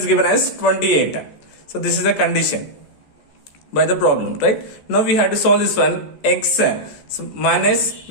given as 28. So this is the condition by the problem, right? Now we have to solve this one. X, so minus,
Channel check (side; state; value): right; late; 14 ms